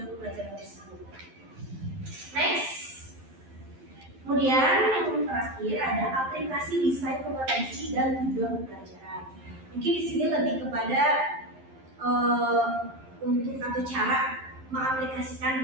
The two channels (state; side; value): late; left; 11 ms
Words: pembelajaran tersebut. Next. Kemudian yang terakhir ada aplikasi desain kompetensi dan tujuan pembelajaran. Mungkin di sini lebih kepada untuk atau cara mengaplikasikan